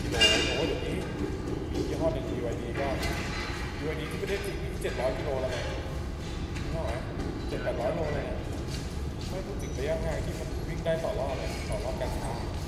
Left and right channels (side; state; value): both; identical; correlation 1.00